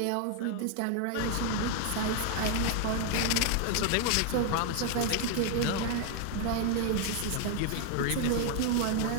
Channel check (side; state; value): both; different; correlation 0.00